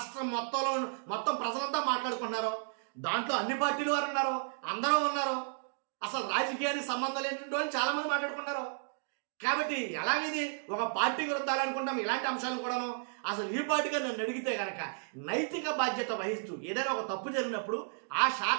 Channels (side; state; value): left; silent; digital silence